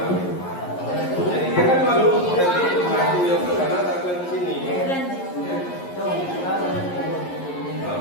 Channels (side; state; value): right; late; 11 ms